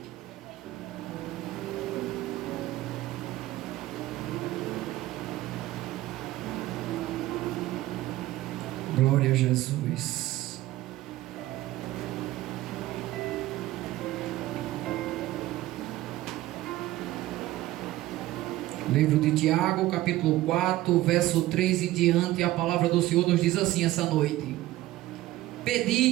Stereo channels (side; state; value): left; quieter; 16.1 dB